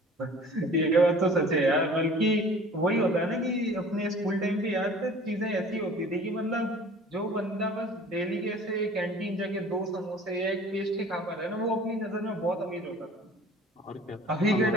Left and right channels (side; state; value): both; normal; correlation 0.47